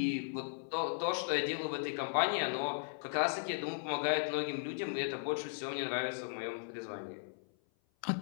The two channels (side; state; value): right; silent; 53 dB below the other